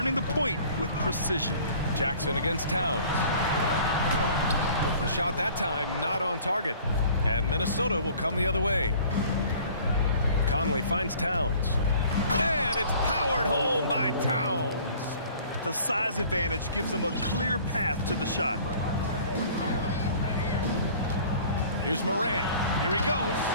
the point with precision. Jackson against Towns. The shot that time not on target, and Minnesota will come the other way. Conley finds Towns, and it's powered home by Towns. The size advantage gives him a clear path to the shot. Here's Morant. Here he goes.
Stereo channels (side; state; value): both; inverted; correlation -0.50